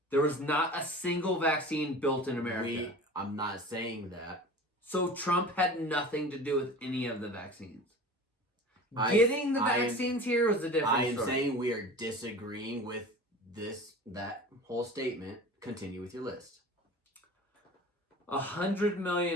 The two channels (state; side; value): normal; both; correlation 0.38